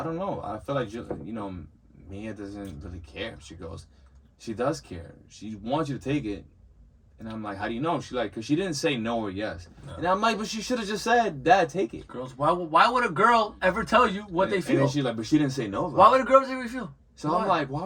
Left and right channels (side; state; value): both; identical; correlation 1.00